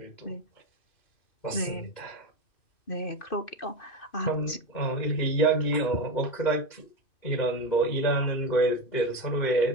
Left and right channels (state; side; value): late; right; 2.5 ms